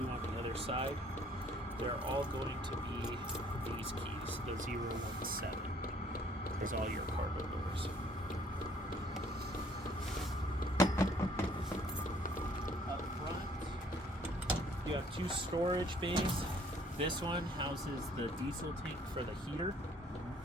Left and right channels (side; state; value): both; normal; correlation 0.60